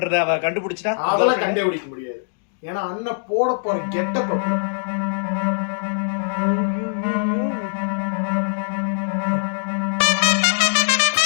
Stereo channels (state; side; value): silent; right; digital silence